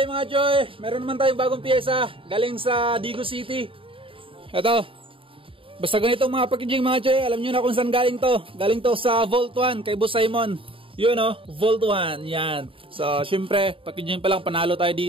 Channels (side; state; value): left; late; 0.26 ms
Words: mga Joy. Meron naman tayong bagong piyesa galing sa Digo City. Ito, basta ganito mga packaging mga Joy. Alam nyo na kung saan galing to. Galing to sa Vault 1 kay Boss Simon. Yun o, Vault 1, yan. So syempre, packaging pa lang, panalo tayo